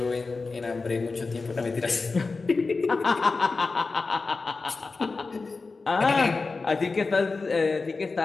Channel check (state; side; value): quieter; right; 4.0 dB